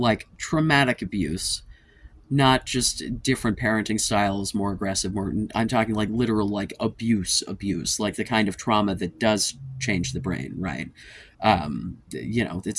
traumatic abuse, not just different parenting styles, more aggressive, more, I'm talking like literal like abuse, like the kind of trauma that does change the brain, right?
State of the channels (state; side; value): identical; both; correlation 1.00